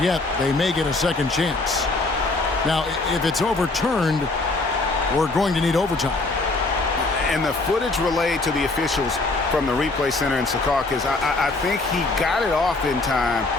yet. They may get a second chance. Now, if it's overturned, we're going to need overtime. And the footage relayed to the officials from the replay center in Secaucus, I think he got it off in time.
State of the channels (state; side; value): quieter; right; 3.3 dB